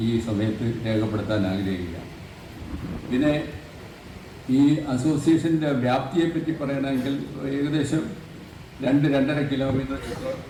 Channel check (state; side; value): identical; both; correlation 1.00